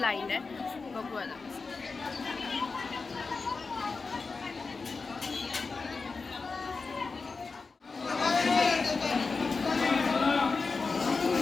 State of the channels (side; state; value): right; quieter; 4.3 dB